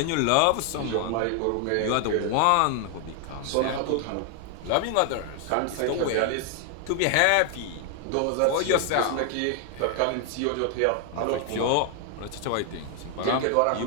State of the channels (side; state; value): both; different; correlation 0.00